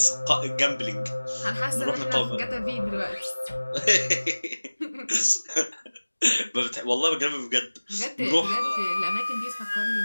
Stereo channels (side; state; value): both; inverted; correlation -1.00